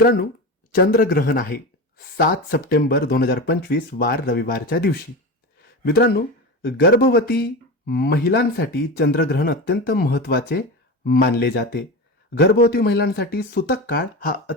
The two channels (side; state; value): both; normal; correlation 0.24